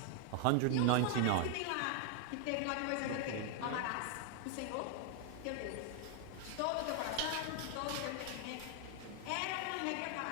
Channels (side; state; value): both; different; correlation 0.00